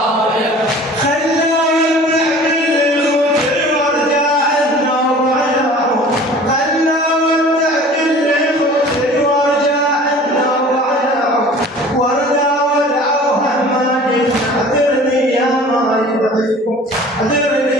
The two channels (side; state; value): both; normal; correlation 0.45